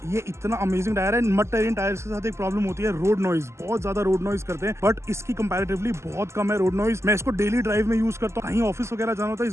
ये इतना अमेजिंग टायर है। मड टेरेन टायर के साथ एक प्रॉब्लम होती है रोड नॉइज, बहुत ज्यादा रोड नॉइज करते हैं, बट इसकी कंपैरेटिवली बहुत कम है रोड नॉइज। मैं इसको डेली ड्राइव में यूज करता हूँ, कहीं ऑफिस वगैरह जाना होता है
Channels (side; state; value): left; late; 0.13 ms